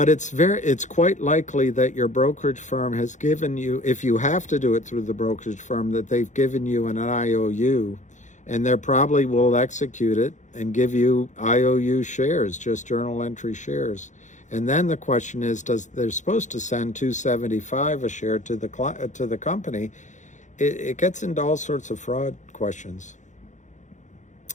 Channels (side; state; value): right; late; 0.35 ms